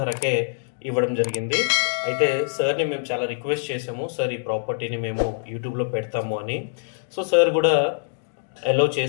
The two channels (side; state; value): right; silent; digital silence